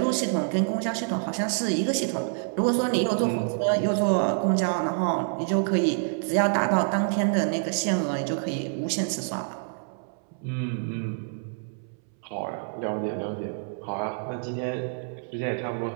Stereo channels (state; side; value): silent; left; 60 dB below the other